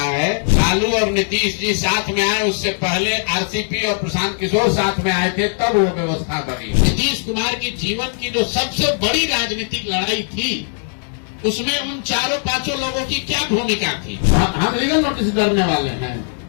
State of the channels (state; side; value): silent; right; 63 dB below the other